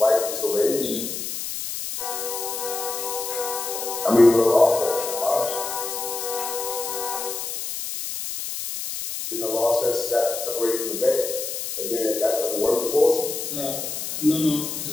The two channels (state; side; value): noise; left; hiss, 5 dB below the sound